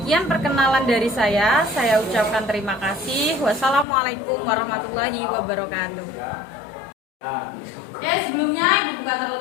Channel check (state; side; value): drops out; right; at 3.9 s